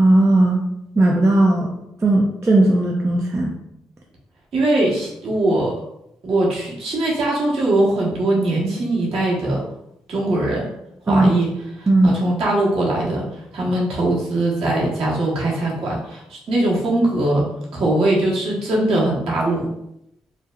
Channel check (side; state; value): both; normal; correlation 0.85